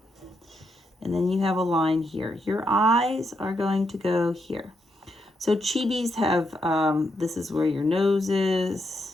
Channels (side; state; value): both; normal; correlation 0.80